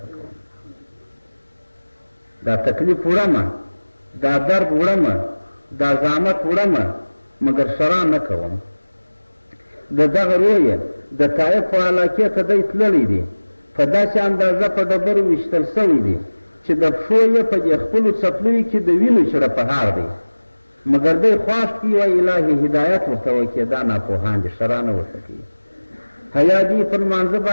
پکوم. دا تکلیف وړمه، دا درد وړمه، دا زحمت وړمه، مګر شرع نه کوم. د دغه رویه د طایف په علاقې ته دی تللی دی، په داسې اندازه په ډبرو ویشتل سوی دی چې د پښو یې په دې خپلو څپلیو کې د وینو چړپهار دی، مګر دی خواست کي وایي الهي هدایت ورته وکړي، دا ناپوهان دي، شرع نه ورته کوي. حیا دي پر لمانځه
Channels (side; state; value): both; inverted; correlation -1.00